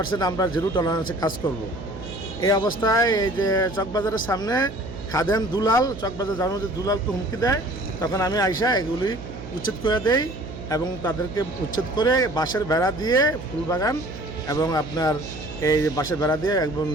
আমরা জিরো টলারেন্সে কাজ করব। এই অবস্থায় এই যে চকবাজারের সামনে খাদেম দুলাল, চকবাজার যাওয়ার মধ্যে দুলালকে হুমকি দেয়, তখন আমি আইসা এগুলি উচ্ছেদ করে দেই এবং তাদেরকে উচ্ছেদ করে বাঁশের বেড়া দিয়ে ফুলবাগান এবং আপনার এই বাঁশের বেড়া দিয়ে একদম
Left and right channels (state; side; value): noise; right; hum, 12 dB below the sound